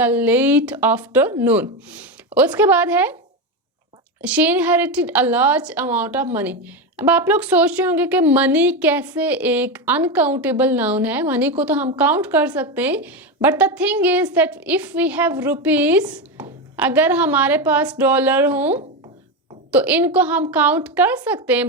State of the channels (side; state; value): both; normal; correlation 0.14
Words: late afternoon. उसके बाद है she inherited a large amount of money. अब आप लोग सोच रहे होंगे कि मनी कैसे एक अनकाउंटेबल नाउन है। मनी को तो हम काउंट कर सकते हैं, but the thing is that if we have rupees, अगर हमारे पास डॉलर हो तो इनको हम काउंट कर सकते हैं,